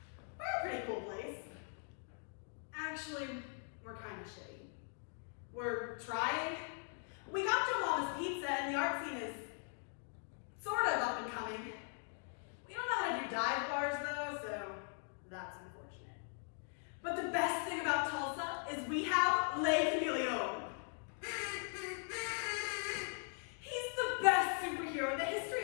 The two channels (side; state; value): right; silent; 51 dB below the other